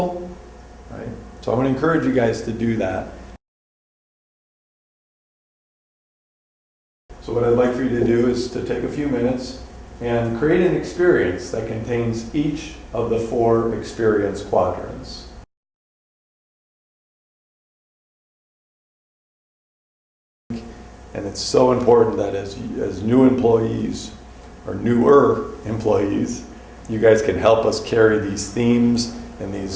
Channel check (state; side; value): identical; both; correlation 1.00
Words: right? So I'm going to encourage you guys to do that. So what I'd like for you to do is to take a few minutes and create an experience that contains each of the 4 experience quadrants. And it's so important that as new employees, or newer employees, you guys can help us carry these themes and